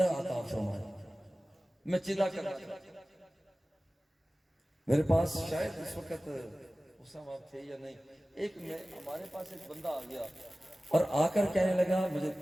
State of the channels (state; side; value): normal; both; correlation 0.97